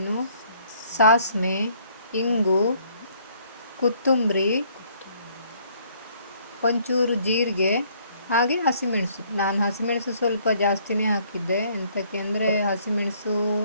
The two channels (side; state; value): both; inverted; correlation -0.63